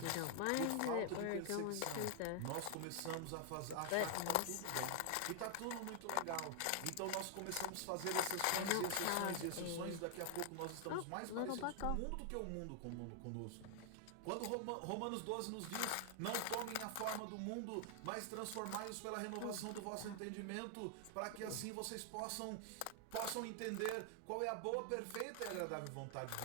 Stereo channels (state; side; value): different; both; correlation 0.00